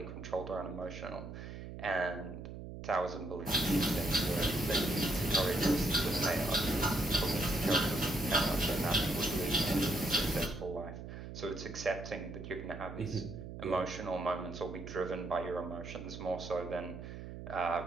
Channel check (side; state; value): right; noise; hum, 10 dB below the sound